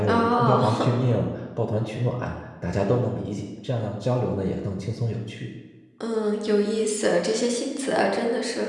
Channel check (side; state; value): both; identical; correlation 1.00